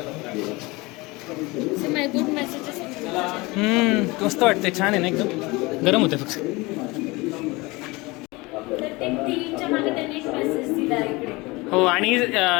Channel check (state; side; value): quieter; right; 23.5 dB